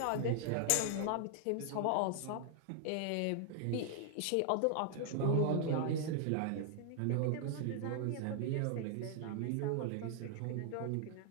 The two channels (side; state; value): both; different; correlation 0.00